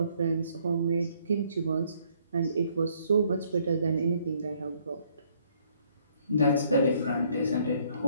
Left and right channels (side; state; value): both; inverted; correlation -0.66